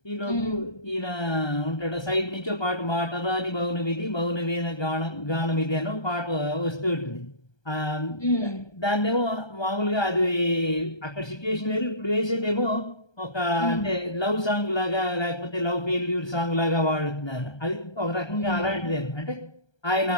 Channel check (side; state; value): right; late; 1.3 ms